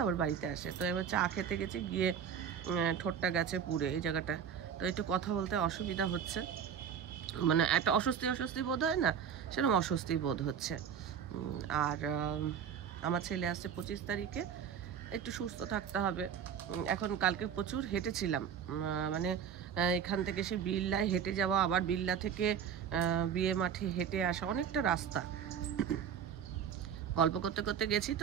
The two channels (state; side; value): quieter; left; 8.0 dB